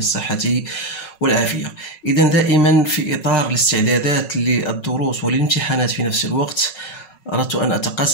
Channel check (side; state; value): right; late; 5.4 ms